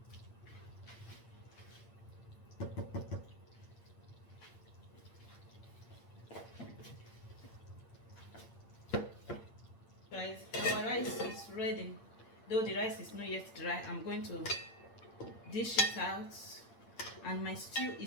Guys, our rice is ready. Though the rice is not yet dry, I'm going to dish it out. And my stew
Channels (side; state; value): right; late; 8.8 ms